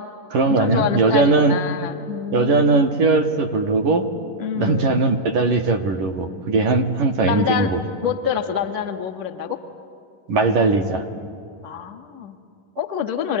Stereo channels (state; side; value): late; left; 11 ms